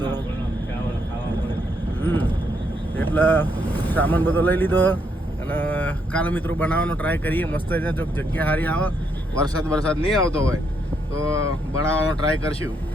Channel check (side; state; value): both; normal; correlation 0.76